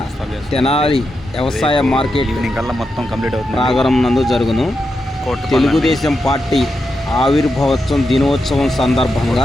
తెనాలి వ్యవసాయ మార్కెట్ మొత్తం కంప్లీట్ అవుతుంది ప్రాంగణం నందు జరుగును. తెలుగుదేశం పార్టీ ఆవిర్భావోత్సవం దినోత్సవం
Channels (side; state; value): both; normal; correlation 0.86